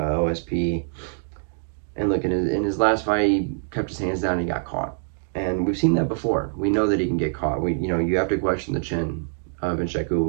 And look, in his last fight, he kept his hands down and he got caught. And we've seen that before. We know that he can get caught. You have to question the chin of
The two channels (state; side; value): silent; left; digital silence